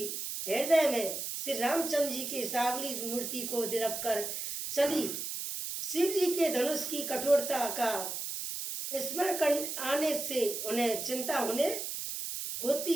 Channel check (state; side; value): noise; right; hiss, 4 dB below the sound